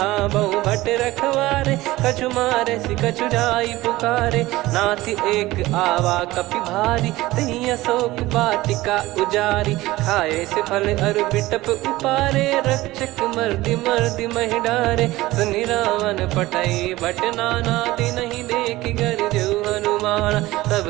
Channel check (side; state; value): left; quieter; 18.2 dB